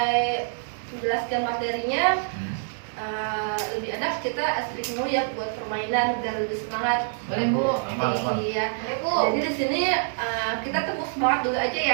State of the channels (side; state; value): left; silent; digital silence